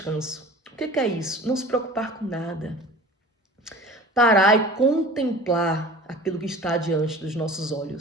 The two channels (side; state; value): both; normal; correlation 0.41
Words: O que é isso? Não se preocupar com nada. Parar e contemplar aquilo que está diante dos nossos